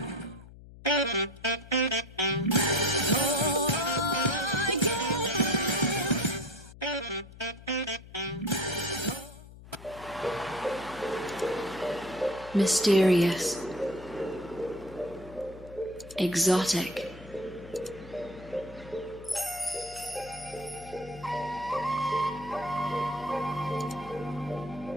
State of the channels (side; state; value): left; noise; hum, 18 dB below the sound